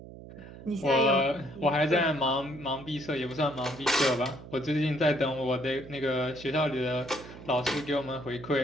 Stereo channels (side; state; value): right; noise; hum, 15 dB below the sound